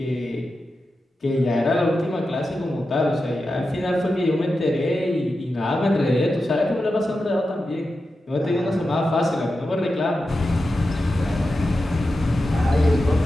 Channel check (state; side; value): normal; both; correlation 0.91